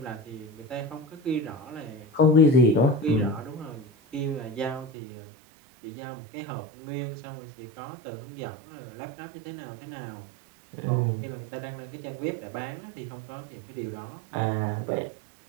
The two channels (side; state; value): left; drops out; at 4.9 s